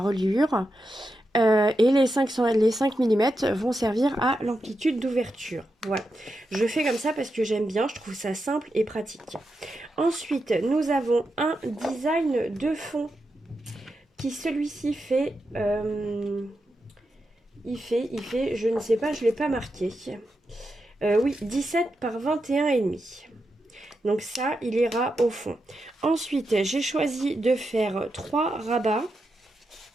et les 5 mm vont servir à l'amplitude d'ouverture. Voilà, je fais comme ça parce que j'aime bien, je trouve ça simple et pratique. Ensuite, nous avons un design de fond qui celui-ci fait, il fait, je ne sais pas, je ne l'ai pas marqué. Oui, 17 par 21,5. Donc ça, il ira au fond. Ensuite, j'ai choisi de faire 3 rabats.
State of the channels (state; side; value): normal; both; correlation 0.87